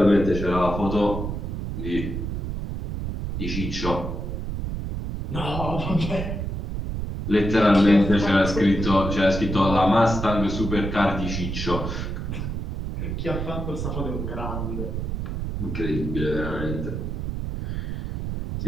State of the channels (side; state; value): right; noise; rumble, 4 dB below the sound